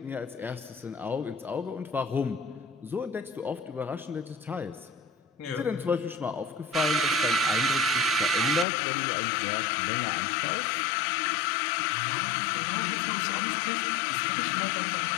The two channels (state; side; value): drops out; right; at 8.7 s